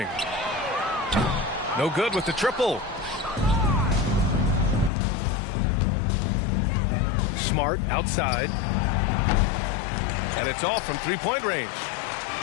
No good with the triple. Smart outside. And it's all from three-point range.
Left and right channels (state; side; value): drops out; right; at 4.9 s